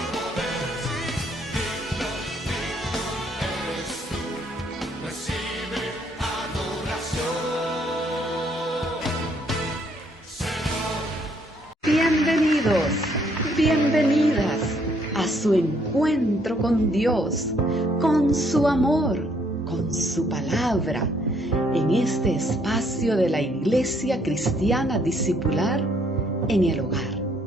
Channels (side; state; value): both; normal; correlation 0.68